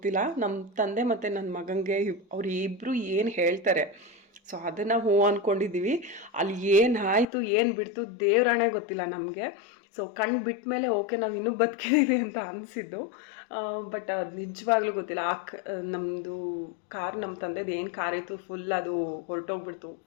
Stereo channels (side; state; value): right; drops out; at 7.2 s